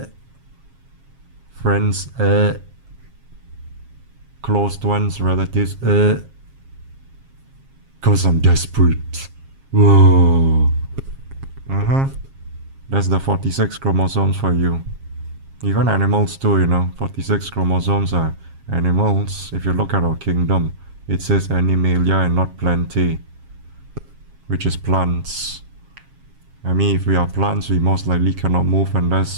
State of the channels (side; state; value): left; late; 7.4 ms